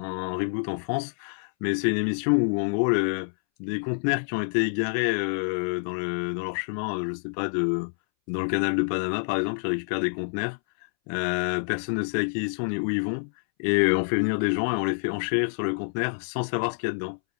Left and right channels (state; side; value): silent; right; 60 dB below the other